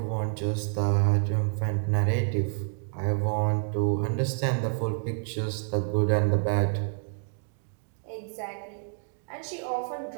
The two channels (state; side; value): silent; left; 57 dB below the other